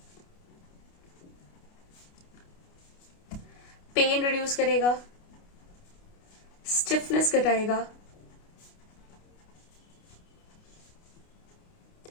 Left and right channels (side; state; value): right; late; 29 ms